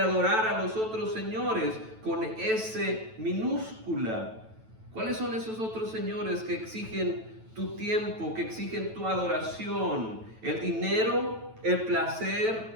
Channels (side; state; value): left; late; 9.1 ms